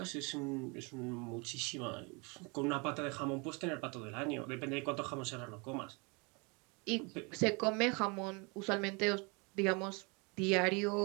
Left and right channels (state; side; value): quieter; left; 30.3 dB